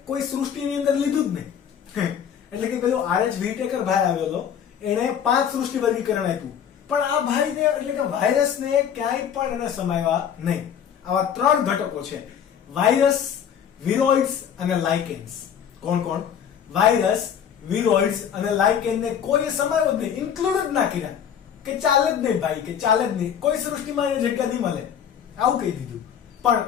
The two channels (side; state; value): right; quieter; 8.5 dB